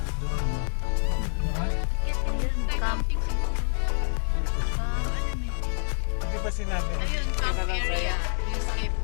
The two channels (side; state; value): right; silent; 60 dB below the other